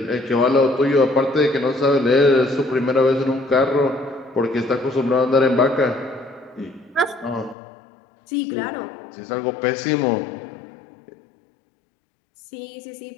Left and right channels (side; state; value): right; drops out; at 7.6 s